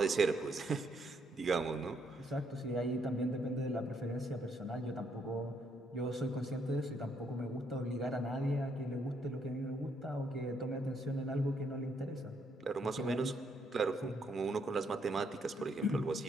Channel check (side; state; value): both; normal; correlation 0.72